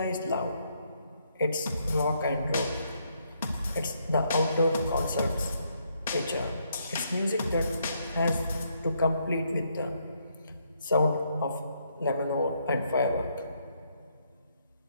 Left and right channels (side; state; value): both; inverted; correlation -0.74